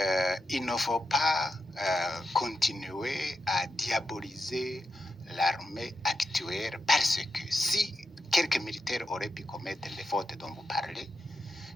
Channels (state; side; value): normal; both; correlation 0.88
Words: il ne faut pas continuer à diaboliser l'armée actuelle parce que si quelques militaires auraient pu commettre les fautes dont vous parlez,